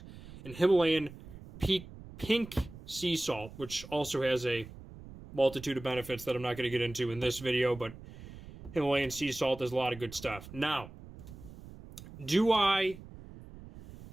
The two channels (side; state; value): right; noise; rumble, 16 dB below the sound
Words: and Himalayan pink sea salt, which also has a multitude of benefits that I'm not going to get into in this video, but Himalayan sea salt does a lot of good stuff. Now, why